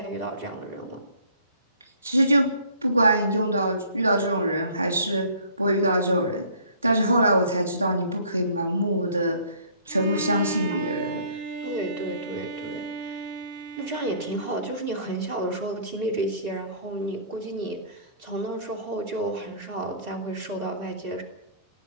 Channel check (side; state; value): both; inverted; correlation -0.54